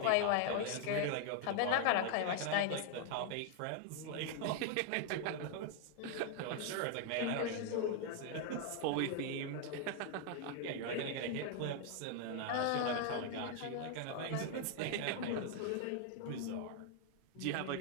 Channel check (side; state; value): both; different; correlation 0.00